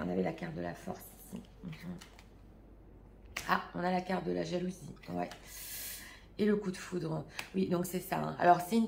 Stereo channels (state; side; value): identical; both; correlation 1.00